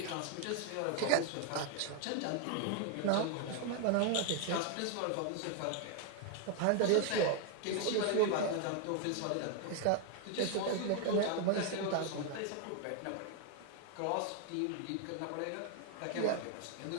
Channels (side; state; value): both; different; correlation 0.01